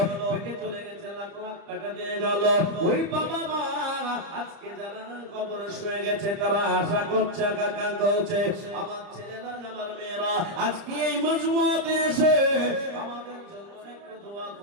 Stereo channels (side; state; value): left; late; 30 ms